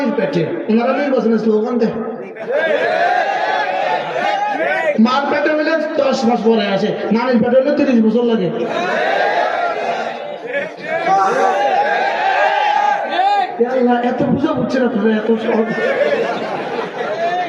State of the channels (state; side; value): identical; both; correlation 1.00